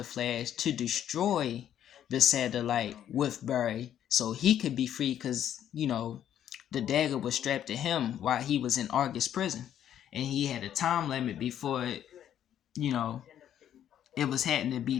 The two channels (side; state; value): right; quieter; 10.4 dB